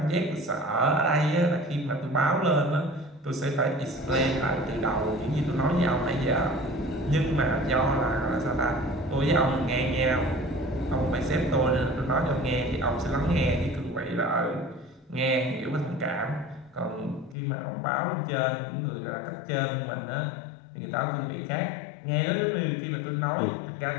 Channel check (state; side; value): drops out; right; at 17.4 s